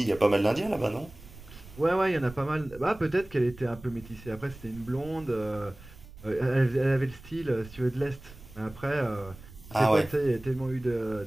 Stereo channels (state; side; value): noise; right; rumble, 18 dB below the sound